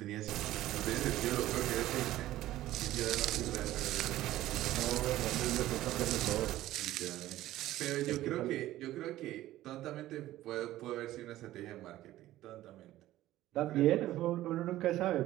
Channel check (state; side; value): quieter; left; 14.9 dB